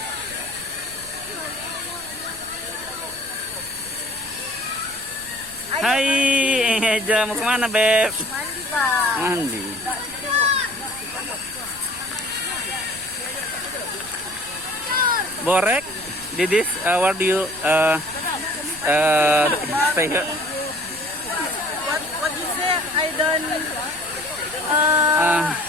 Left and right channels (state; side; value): noise; right; rumble, 20 dB below the sound